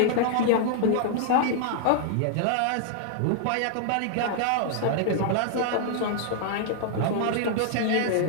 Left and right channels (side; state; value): both; different; correlation -0.01